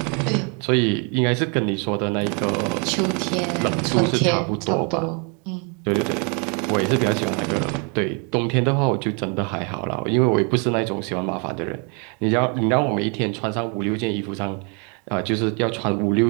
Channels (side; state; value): left; quieter; 35.6 dB